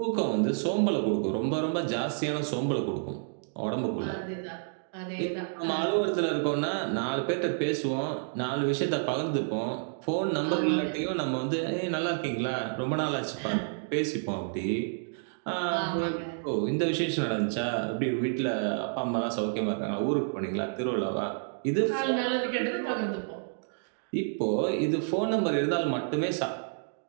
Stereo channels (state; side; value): silent; left; digital silence